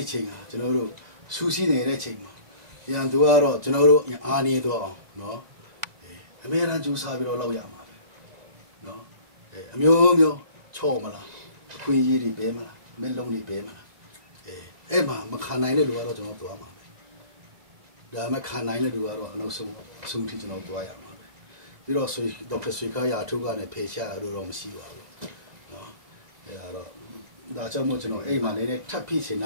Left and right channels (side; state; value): left; late; 2.0 ms